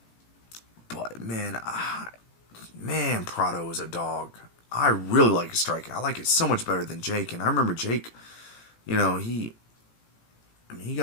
But, man, Prado is a dog. I really like his striking. I like it so much better than Jake. And I remember Jake, he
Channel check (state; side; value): late; right; 18 ms